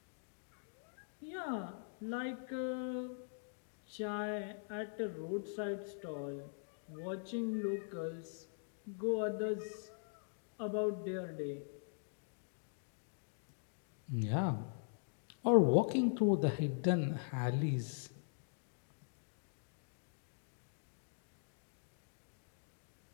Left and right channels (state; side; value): silent; right; digital silence